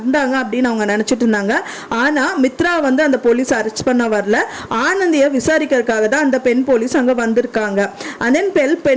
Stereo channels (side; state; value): both; identical; correlation 1.00